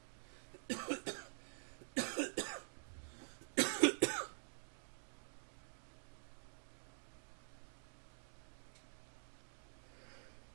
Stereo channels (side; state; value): left; silent; digital silence